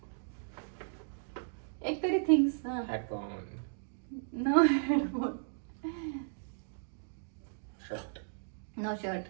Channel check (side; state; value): left; silent; digital silence